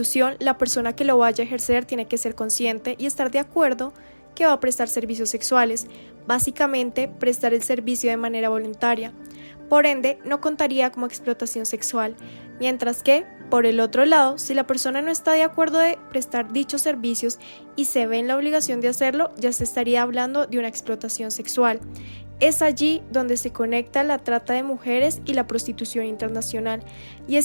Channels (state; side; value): inverted; both; correlation -1.00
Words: la persona que lo vaya a ejercer tiene que ser consciente y estar de acuerdo que va a prestar servicios sexuales, básicamente prestar el servicio de manera voluntaria. Por ende, no contaría como explotación sexual, mientras que, por el otro lado, si la persona no está de acuerdo de prestar dichos servicios y se ve en la obligación de hacerlo, ya se estaría hablando de una explotación sexual. Es allí donde se conecta la trata de mujeres y la prostitución internacional. Y